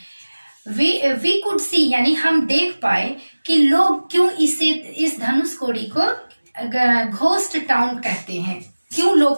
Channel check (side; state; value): both; inverted; correlation -1.00